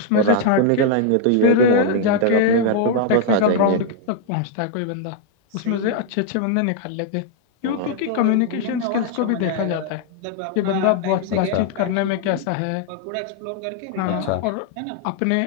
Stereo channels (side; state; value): both; different; correlation 0.00